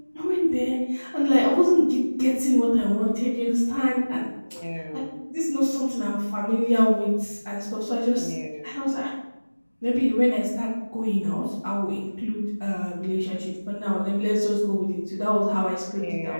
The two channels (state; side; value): inverted; both; correlation -1.00